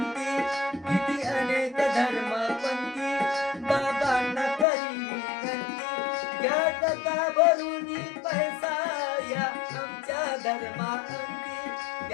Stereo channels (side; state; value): right; drops out; at 4.7 s